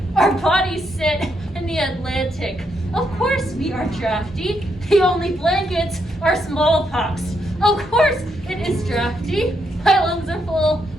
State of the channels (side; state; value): both; normal; correlation 0.78